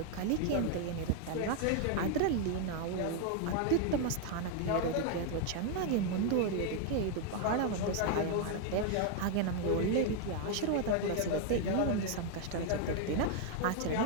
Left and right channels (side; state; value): both; different; correlation 0.00